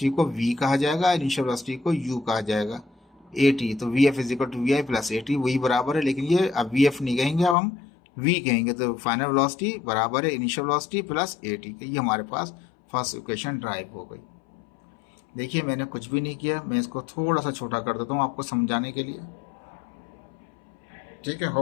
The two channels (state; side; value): drops out; right; at 7.6 s